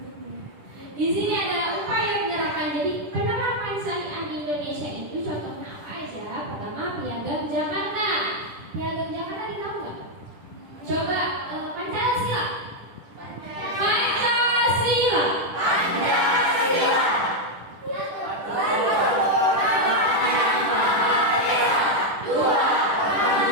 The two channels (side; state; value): left; late; 10 ms